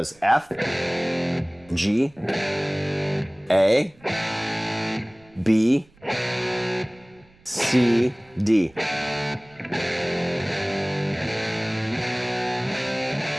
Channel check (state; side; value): noise; right; rumble, 29 dB below the sound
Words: F, G, A, B, C, D.